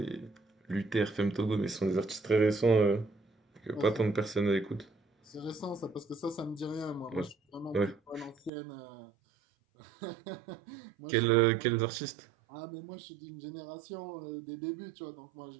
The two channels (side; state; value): left; drops out; at 8.5 s